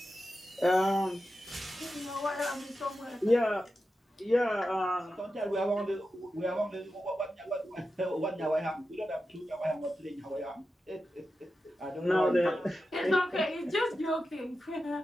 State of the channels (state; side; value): normal; both; correlation 0.91